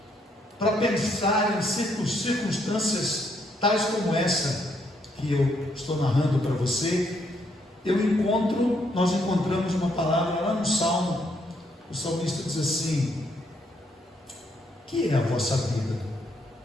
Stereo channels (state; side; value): normal; both; correlation 0.73